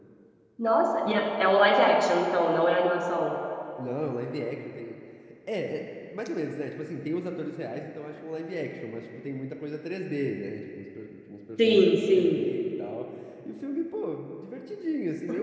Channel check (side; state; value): both; identical; correlation 1.00